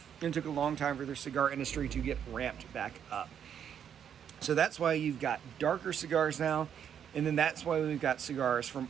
and it took a long time for their cigar industry to get ramped back up. So that's why you've got darker cigars now, and then that's why we've got cigars from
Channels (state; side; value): quieter; left; 8.6 dB